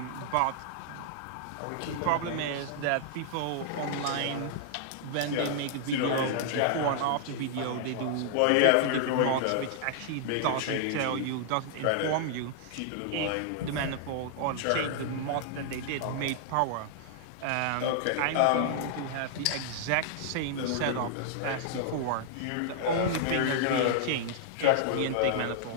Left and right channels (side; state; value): both; different; correlation -0.01